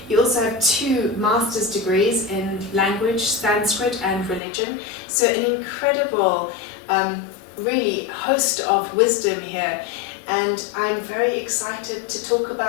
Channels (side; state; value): right; drops out; at 4.4 s